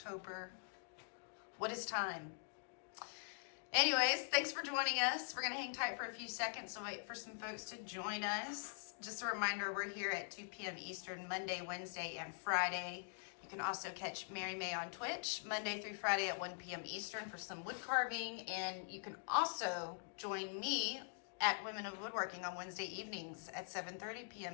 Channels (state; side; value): silent; right; digital silence